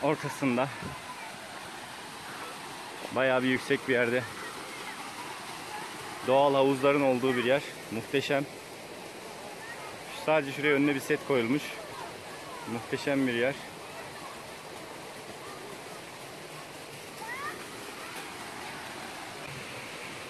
ortasında bayağı bir yüksek bir yerde doğal havuzların olduğu bir yer. Muhteşem. Sadece şuraya önüne bir set koyulmuş. Muhteşem bir yer.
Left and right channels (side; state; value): both; identical; correlation 1.00